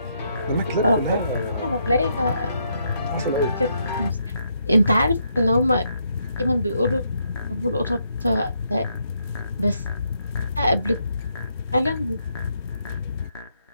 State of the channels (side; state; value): both; inverted; correlation -0.76